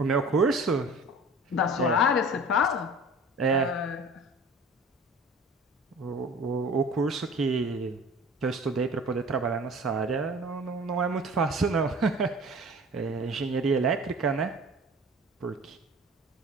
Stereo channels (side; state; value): both; normal; correlation 0.42